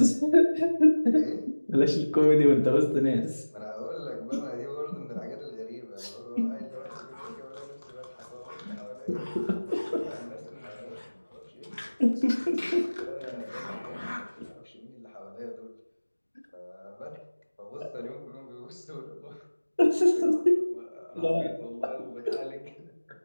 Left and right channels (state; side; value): inverted; both; correlation -1.00